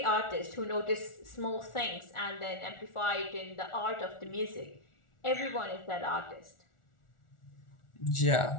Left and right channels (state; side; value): late; right; 1.4 ms